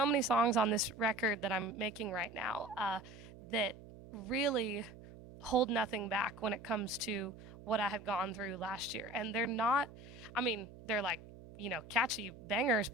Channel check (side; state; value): right; noise; hum, 17 dB below the sound